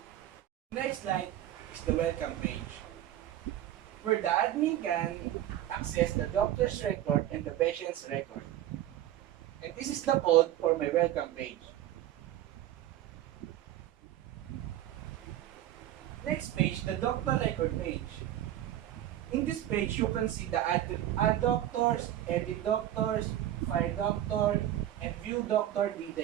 Next slide is the welcome page where the admin can access the doctor's record and the patient's record. And this is the code for my welcome page. Next page, the doctor record page. In this page, you can see the add doctors, edit doctors, file doctor, and view doctor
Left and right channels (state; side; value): quieter; left; 12.7 dB